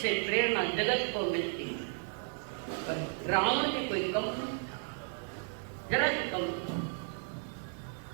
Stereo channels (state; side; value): silent; left; 55 dB below the other